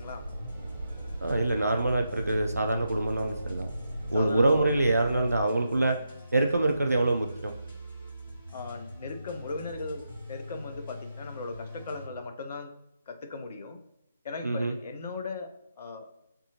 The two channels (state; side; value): inverted; both; correlation -0.84